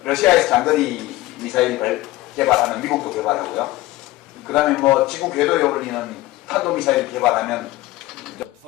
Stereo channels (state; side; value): quieter; right; 17.8 dB